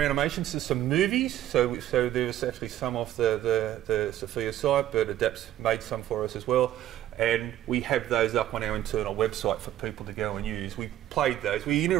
animations, so some movies. So there was actually some off the Sophia site, but ADAPS made some for us as well. And we have those up on our internal website for people to go and use. We played those. We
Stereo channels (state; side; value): quieter; left; 12.7 dB